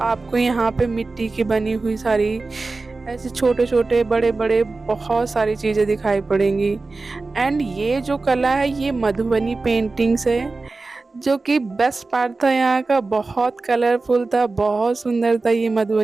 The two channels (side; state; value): left; quieter; 3.6 dB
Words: यहाँ पे मिट्टी की बनी हुई सारी ऐसे छोटे-छोटे, बड़े-बड़े बहुत सारी चीज़ें दिखाई पड़ेंगी। एंड ये जो कला है ये मधुबनी पेंटिंग्स है, जो कि बेस्ट पार्ट था यहाँ का, बहुत कलरफुल था, बहुत सुंदर था ये